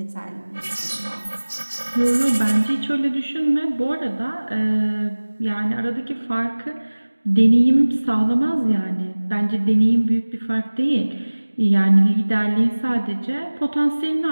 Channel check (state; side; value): inverted; both; correlation -1.00